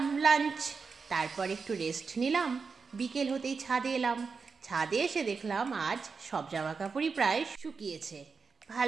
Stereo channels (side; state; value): left; quieter; 5.1 dB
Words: লাঞ্চ। তারপর একটু রেস্ট নিলাম। বিকেল হতেই ছাদে এলাম। ছাদে এসে দেখলাম আজ সব জামা কাপড়ই প্রায় শুকিয়েছে।